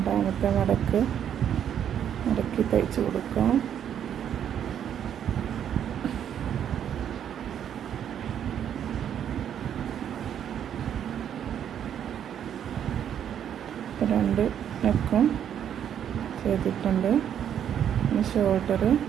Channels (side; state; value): left; quieter; 9.3 dB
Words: മടക്ക് മടക്കി തയ്ച്ചു കൊടുക്കാം. ഇപ്പോൾ 2 നെക്കും ചെയ്തിട്ടുണ്ട്. ഇനി ഷോൾഡർ